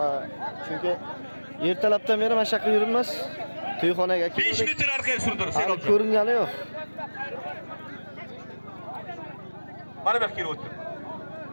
Chunki ertalabdan beri mana shu yoqqa yuribmiz. To'yxonaga 5 metr orqaga surdirib, ko'ringani yo'q. Mana bu kelib o'tir.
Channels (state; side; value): inverted; both; correlation -1.00